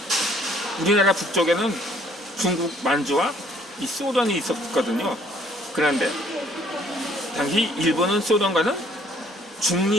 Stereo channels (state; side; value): normal; both; correlation 0.60